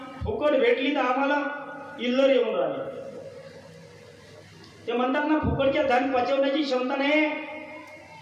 फुकट भेटली तर आम्हाला इल्लर येऊन राहिले. ते म्हणतात ना फुकटच्या धन पचवण्याची क्षमता नाही.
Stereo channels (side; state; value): both; identical; correlation 1.00